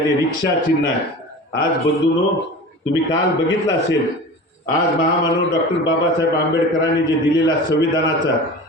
रिक्षा चिन्ह आहे. आज बंधूंनो, तुम्ही काल बघितलं असेल, आज महामानव डॉक्टर बाबासाहेब आंबेडकरांनी जे दिलेला संविधानाचा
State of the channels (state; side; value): normal; both; correlation 0.35